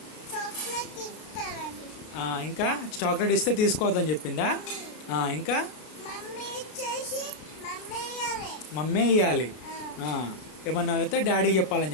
ఇంకా చాక్లెట్ ఇస్తే తీసుకోవద్దని చెప్పిందా? ఇంకా మమ్మీ ఇయ్యాలి. ఏమన్నా అయితే డాడీకి చెప్పాలని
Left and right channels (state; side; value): late; right; 33 ms